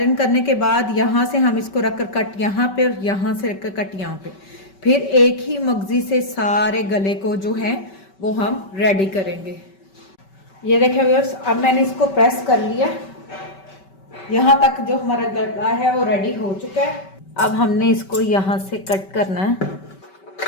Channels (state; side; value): late; right; 5.2 ms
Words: करने के बाद यहाँ से हम इसको रखकर कट यहाँ पे और यहाँ से रखकर कट यहाँ पे, फिर एक ही मगजी से सारे गले को जो है वो हम रेडी करेंगे। ये देखिए व्यूअर्स, अब मैंने इसको प्रेस कर लिया, यहाँ तक जो हमारा गला है वो रेडी हो चुका है। अब हमने इसको यहाँ से कट करना है।